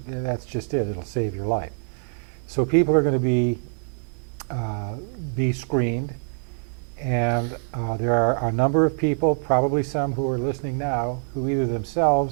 that's just it. It'll save your life. So people are going to be screened, and there are a number of people, probably some who are listening now, who either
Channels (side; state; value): left; silent; 62 dB below the other